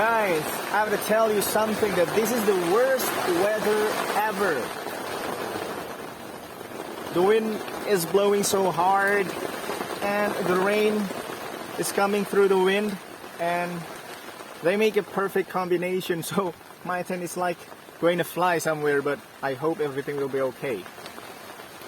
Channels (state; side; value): identical; both; correlation 1.00